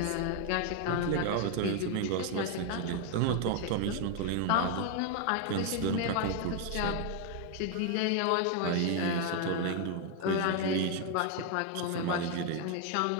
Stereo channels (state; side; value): different; both; correlation 0.01